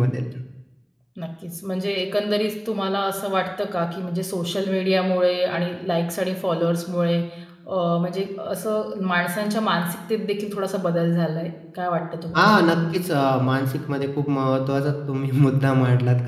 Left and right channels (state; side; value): identical; both; correlation 1.00